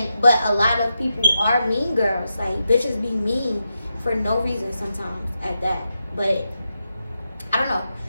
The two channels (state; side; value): inverted; both; correlation -0.87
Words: But a lot of people are mean girls. Like bitches be mean for no reason sometimes at that. But I don't know.